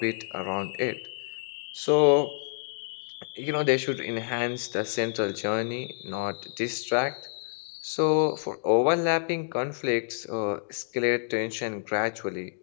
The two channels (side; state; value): right; silent; digital silence